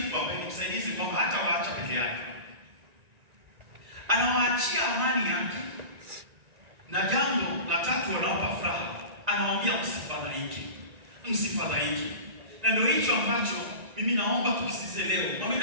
ambaye ni msaidizi, kwamba hata waacha peke yake. Anawaachia amani yake. Na jambo la tatu wanawapa furaha. Anawaambia msifadhaike. Msifadhaike. Na ndio hicho ambacho mimi naomba tukisize leo.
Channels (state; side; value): late; left; 1.9 ms